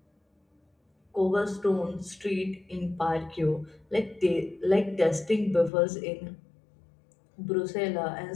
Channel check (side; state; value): right; drops out; at 5.7 s